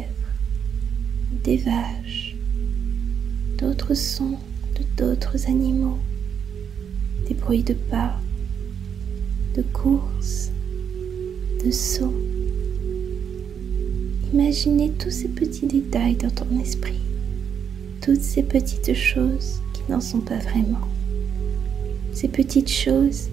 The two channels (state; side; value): quieter; left; 7.7 dB